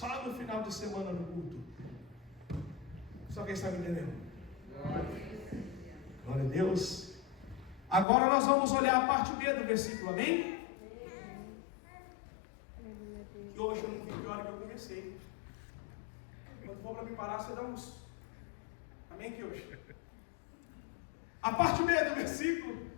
no final de semana no culto. Só quem está me entendendo? Glória a Deus. Agora nós vamos olhar a parte B do versículo, amém? Que hoje eu não vi que hora que eu comecei. Quando for para me parar, você dá uns. Amém, que hoje? A parte B do versículo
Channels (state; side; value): drops out; right; at 8.1 s